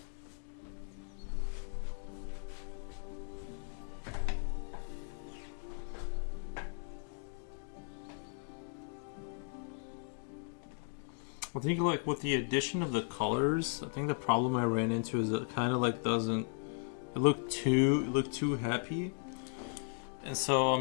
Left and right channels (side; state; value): right; silent; 53 dB below the other